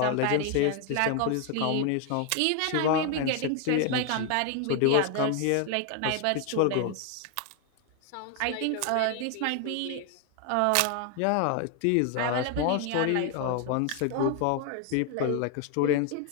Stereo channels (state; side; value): different; both; correlation 0.01